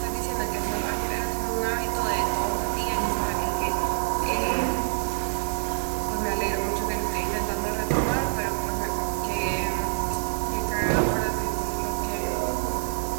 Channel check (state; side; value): silent; left; digital silence